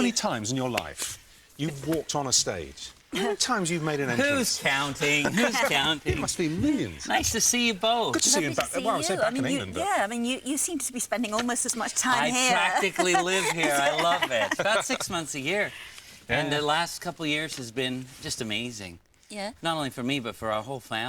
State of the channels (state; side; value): identical; both; correlation 1.00